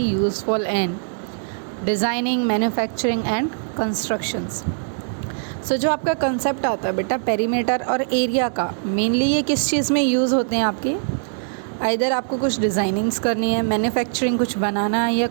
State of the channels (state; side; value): silent; left; digital silence